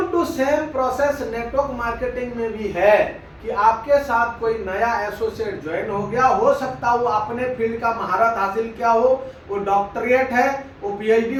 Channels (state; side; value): identical; both; correlation 1.00